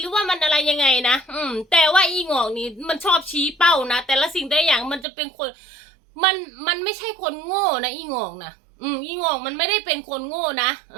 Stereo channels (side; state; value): left; drops out; at 5.1 s